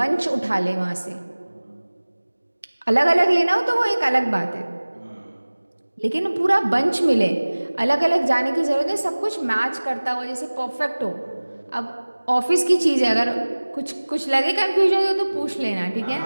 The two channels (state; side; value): inverted; both; correlation -1.00